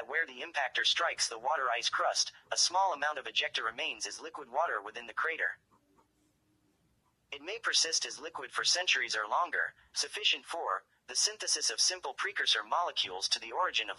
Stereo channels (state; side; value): identical; both; correlation 1.00